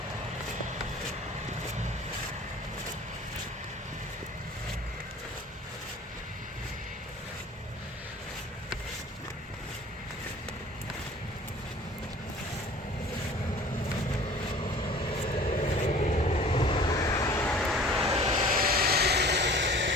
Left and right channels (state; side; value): normal; both; correlation 0.47